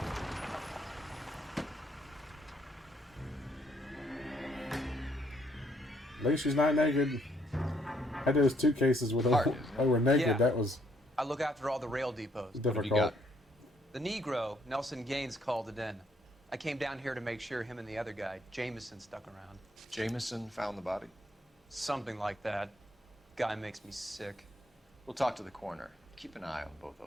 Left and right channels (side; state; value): both; normal; correlation 0.69